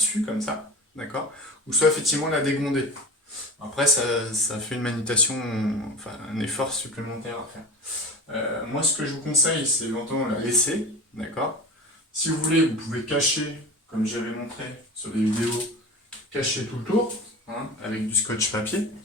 comme ça, d'accord, ou soit effectivement la dégonder. Après ça fait une manutention, enfin un effort supplémentaire à faire. Moi ce que je vous conseille, c'est éventuellement la laisser, d'accord. Si vous voulez, vous pouvez cacher, comme j'avais montré sur des vidéos, cacher tout le tour, hein, avec du scotch papier.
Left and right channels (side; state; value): both; normal; correlation 0.32